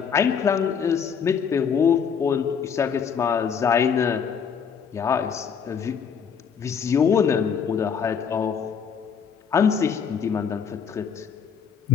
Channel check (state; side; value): quieter; right; 6.9 dB